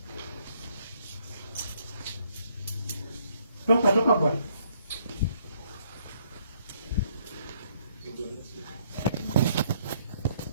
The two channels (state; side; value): inverted; both; correlation -0.68